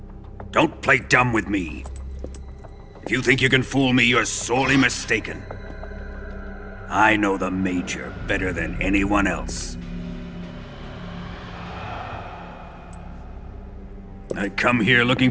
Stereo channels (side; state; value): both; identical; correlation 1.00